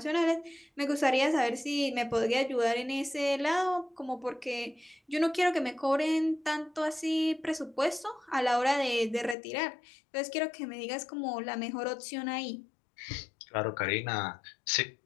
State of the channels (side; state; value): right; drops out; at 9.3 s